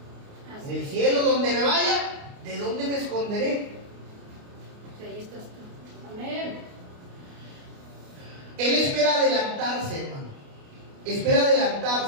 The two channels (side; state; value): left; late; 29 ms